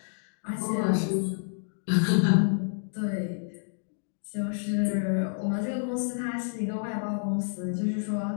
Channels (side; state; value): right; silent; digital silence